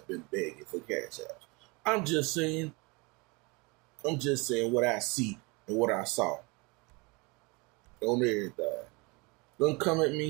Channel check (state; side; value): quieter; left; 27.4 dB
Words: been begging for cash apps. I'm just saying what I see and what I saw. On everything. Don't come at